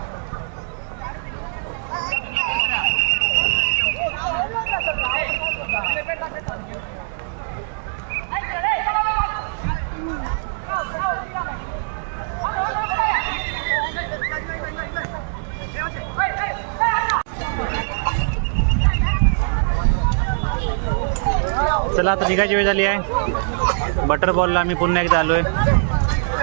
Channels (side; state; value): left; silent; digital silence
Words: चला आता निघायची वेळ झाली आहे. बटर बॉलला आम्ही पुन्हा एकदा आलोय.